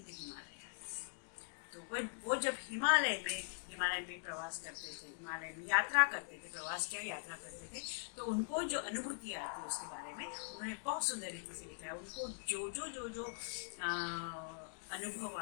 हिमालय। तो वो जब हिमालय में प्रवास करते थे, हिमालय में यात्रा करते थे, यात्रा करते थे, तो उनको जो अनुभूति आती है उसके बारे में उन्होंने बहुत सुंदर रीति से लिखा है। उनको जो अनुभव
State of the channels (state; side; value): silent; right; digital silence